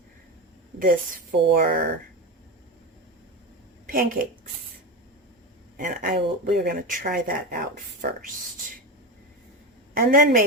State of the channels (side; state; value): both; normal; correlation 0.18